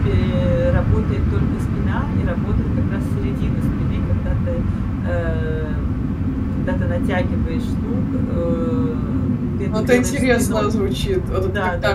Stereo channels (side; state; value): both; identical; correlation 1.00